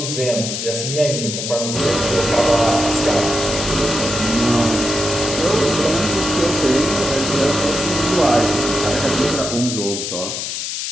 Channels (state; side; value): noise; left; hiss, 4 dB below the sound